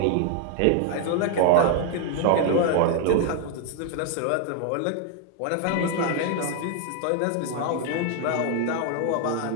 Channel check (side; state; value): both; different; correlation 0.00